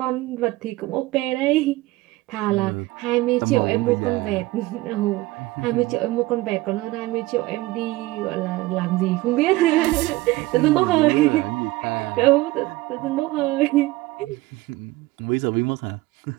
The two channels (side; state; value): left; quieter; 19.0 dB